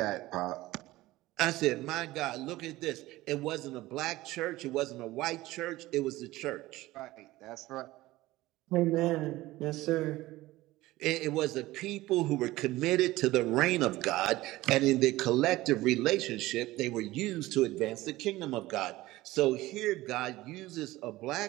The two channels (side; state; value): left; quieter; 17.9 dB